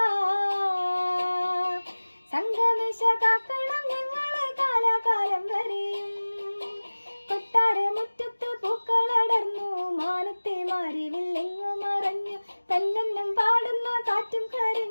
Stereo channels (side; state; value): both; inverted; correlation -1.00